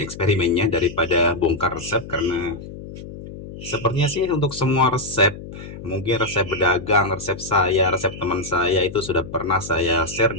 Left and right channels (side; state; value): left; noise; hum, 12 dB below the sound